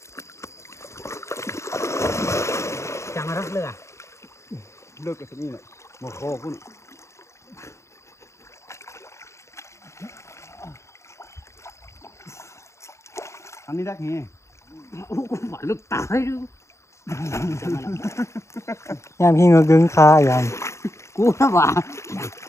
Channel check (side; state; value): right; late; 0.14 ms